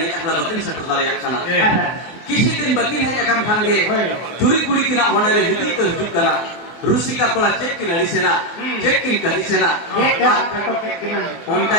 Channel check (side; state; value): right; late; 24 ms